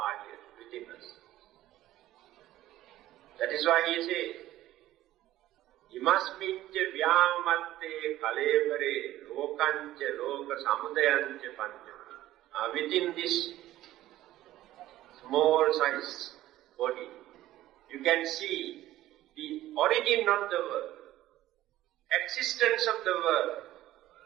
here within us. That is why he says, Imasmicca vyamatte kalevare lokancha loka samudayancha pancha. Within this small size body, you can see the origin of the world, existence of the world,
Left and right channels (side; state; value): left; quieter; 14.7 dB